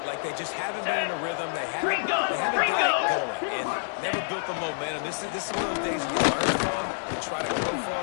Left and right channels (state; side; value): silent; right; digital silence